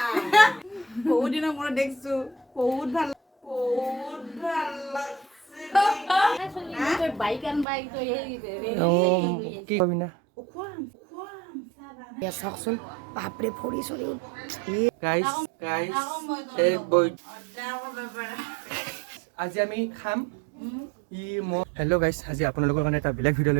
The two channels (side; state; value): left; drops out; at 7.7 s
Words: বহুত দিনৰ মূৰত দেখছো বহুত ভাল লাগছে বাইক আন বাইক তো কি কবি না চাওকচোন বাপৰে ফৰি চৰি গাইস এই বই আজি আমি খাম হেল্ল' গাইছ আজি আপোনালোকৰ কাৰণে এটা বেলেগ ভিডিঅ'